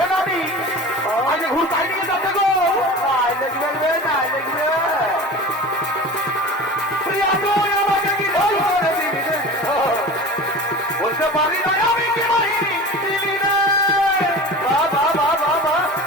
আজকে ঘুর তাই নিয়ে যাচ্ছে গো, দেখবে না দেখবে। প্রিয়া তুই আমাকে কি জাদু করে দিলি রে? বুঝতে পারি নাই আমি কি বাহিনী দিলি রে। বাবা বাবা বাবা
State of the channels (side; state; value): both; normal; correlation 0.35